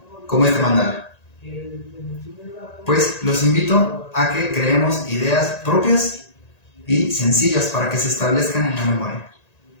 como este mandala. Pues los invito a que creemos ideas propias y sencillas para que se establezcan en la memoria.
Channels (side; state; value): right; late; 1.9 ms